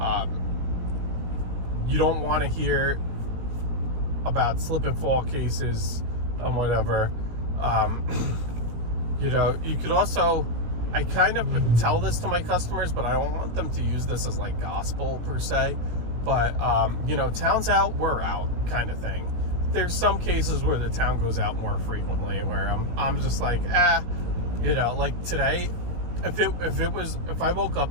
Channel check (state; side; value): late; left; 17 ms